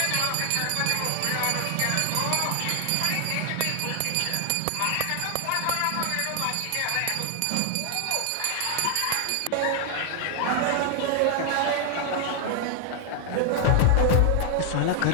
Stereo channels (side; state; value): both; different; correlation 0.00